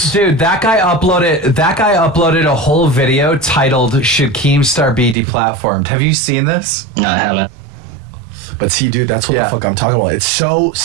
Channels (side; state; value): left; drops out; at 5.2 s